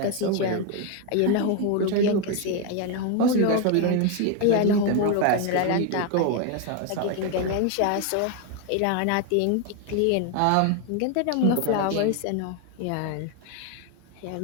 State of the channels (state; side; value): different; both; correlation 0.01